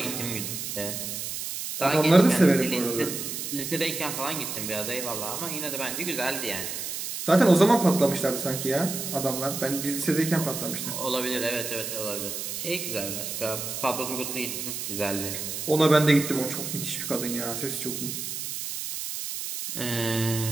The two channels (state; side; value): noise; right; hiss, 5 dB below the sound